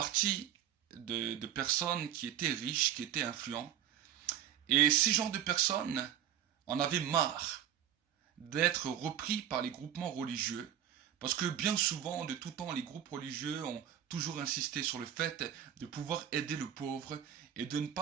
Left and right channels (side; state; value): left; quieter; 10.4 dB